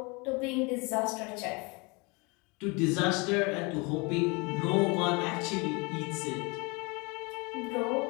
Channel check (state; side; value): quieter; right; 28.4 dB